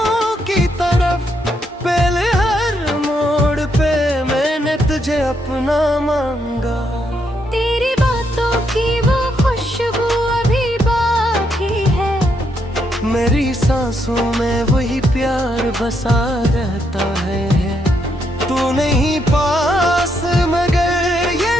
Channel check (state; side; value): normal; both; correlation 0.77